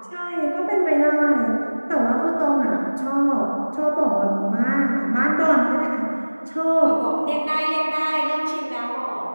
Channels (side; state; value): both; inverted; correlation -1.00